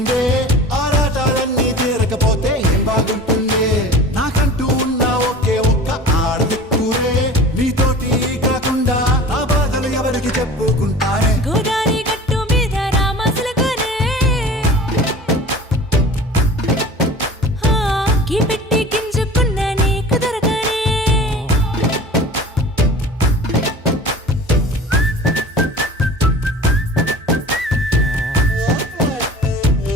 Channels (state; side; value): normal; both; correlation 0.40